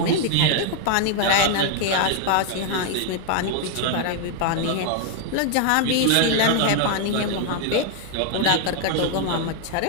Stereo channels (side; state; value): both; different; correlation 0.00